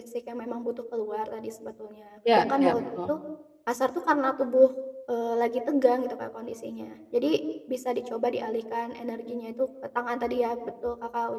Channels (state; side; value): identical; both; correlation 1.00